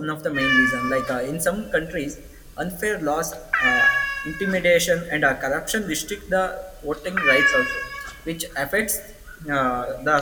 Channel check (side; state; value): both; identical; correlation 1.00